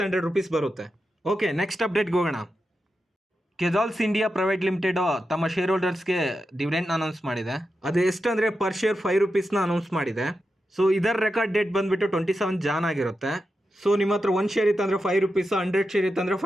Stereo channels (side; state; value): both; normal; correlation 0.89